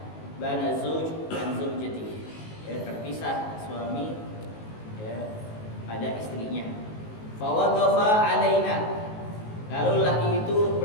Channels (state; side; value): late; right; 19 ms